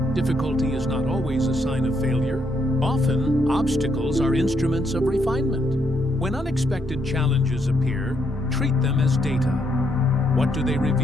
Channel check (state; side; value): normal; both; correlation 0.76